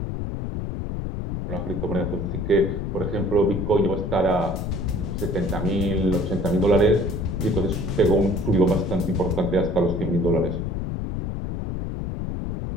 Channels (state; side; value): noise; left; rumble, 4 dB below the sound